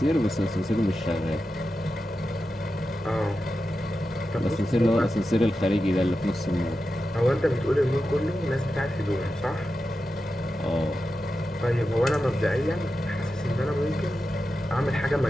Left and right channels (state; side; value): normal; both; correlation 0.91